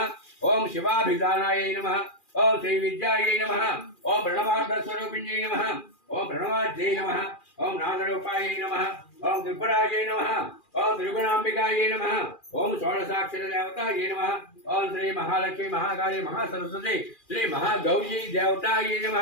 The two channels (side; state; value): right; late; 2.4 ms